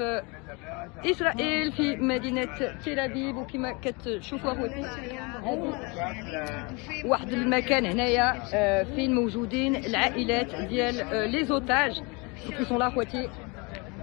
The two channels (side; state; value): right; quieter; 29.1 dB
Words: إسرائيل في مدينة تل أبيب، وكما كتشوفوا خواتي واحد المكان هنايا فين موجودين العائلات ديال لي زوتاج qui sont là خواتي.